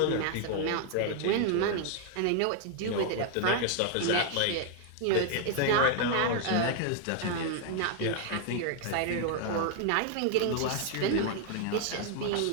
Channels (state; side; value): different; both; correlation 0.00